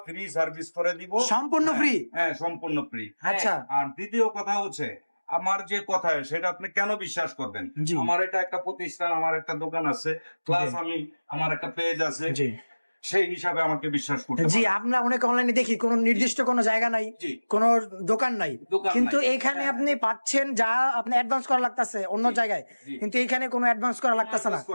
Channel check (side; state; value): both; inverted; correlation -1.00